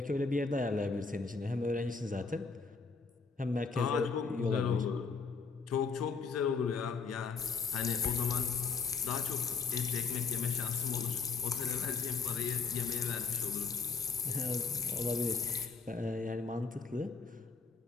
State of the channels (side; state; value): right; quieter; 4.9 dB